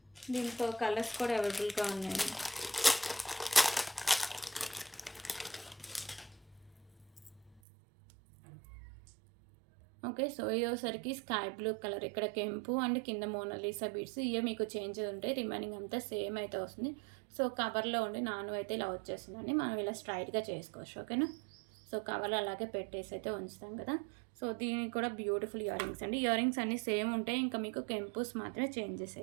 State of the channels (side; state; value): left; drops out; at 7.6 s